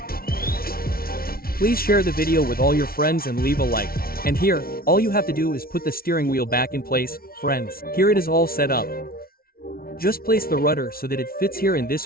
Please share the video with all your friends and leave a like. And here, all you have to do is put the steering wheel back in place, friends. Here it is all set up. Just place the rudder so that it fits here in this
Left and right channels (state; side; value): late; right; 0.43 ms